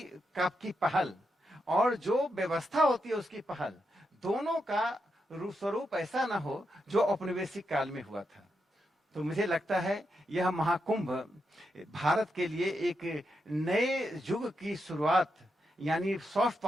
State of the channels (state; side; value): normal; both; correlation 0.84